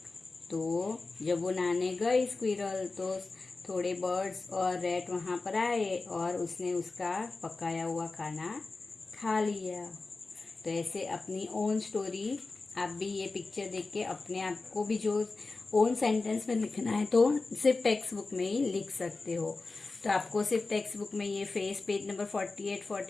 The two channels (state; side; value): quieter; right; 3.7 dB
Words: तो जब वो नहाने गई स्क्विरल तो थोड़े बर्ड्स और रैट वहाँ पर आए और उसने उसका पकाया हुआ खाना खा लिया। तो ऐसे अपनी ओन स्टोरी आप भी ये पिक्चर देख के अपने आप को भी जो ओन सेंटेंस में लिखना है तो सिर्फ टेक्स्ट बुक में ही लिख सकते हो। तो आपको सिर्फ टेक्स्ट बुक में ये फेस पेज नंबर 48